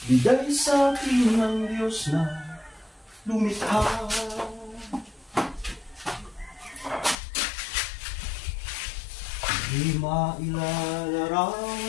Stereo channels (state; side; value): drops out; right; at 7.2 s